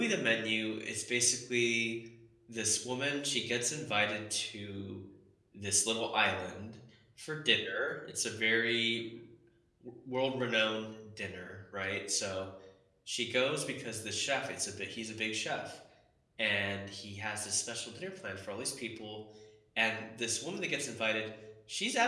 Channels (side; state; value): both; identical; correlation 1.00